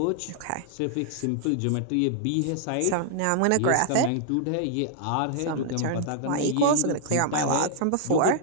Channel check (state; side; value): different; both; correlation -0.01